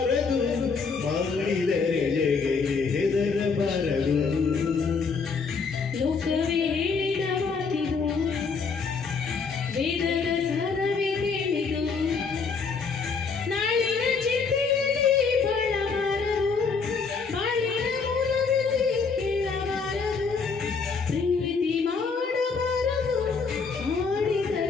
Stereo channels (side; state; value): right; quieter; 5.1 dB